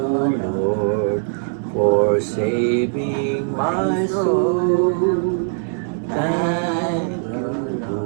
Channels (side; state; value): left; silent; 65 dB below the other